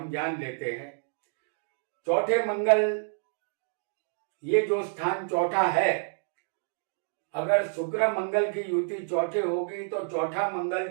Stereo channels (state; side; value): silent; left; digital silence